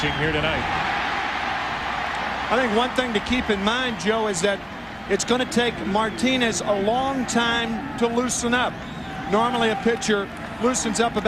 here tonight. I think one thing to keep in mind, Joe, is that it's going to take Martinez a long time to loosen up. Normally a pitcher loosens up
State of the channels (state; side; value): identical; both; correlation 1.00